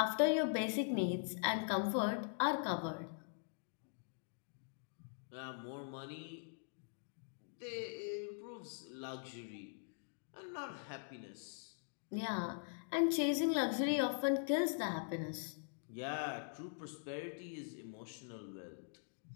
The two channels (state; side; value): silent; right; digital silence